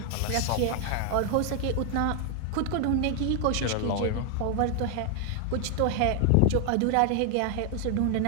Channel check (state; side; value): different; both; correlation 0.00